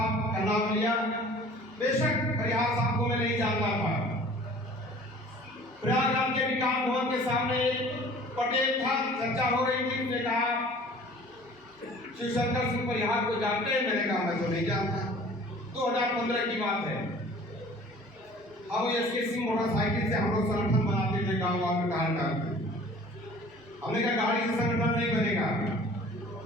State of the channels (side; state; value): both; normal; correlation 0.48